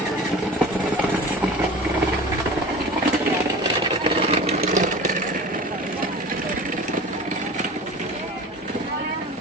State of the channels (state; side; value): normal; both; correlation 0.37